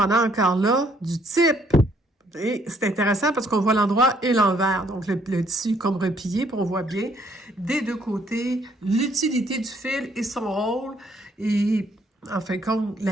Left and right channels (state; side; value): normal; both; correlation 0.66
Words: encore là du type. Et c'est intéressant parce qu'on voit l'endroit et l'envers. Donc, le tissu comme replié, puis on voit bien des 2 côtés l'utilité du fil et son rôle et en fin de compte,